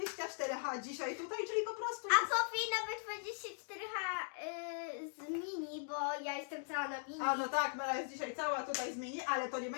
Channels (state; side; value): silent; right; digital silence